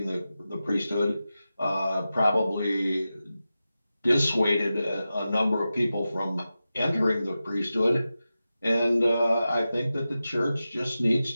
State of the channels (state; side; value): inverted; both; correlation -0.93